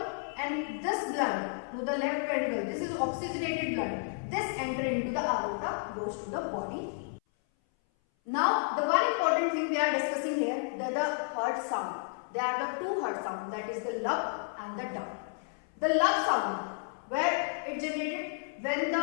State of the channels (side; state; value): right; silent; 57 dB below the other